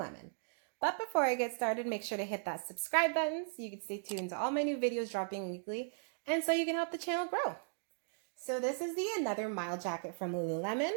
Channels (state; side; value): silent; left; digital silence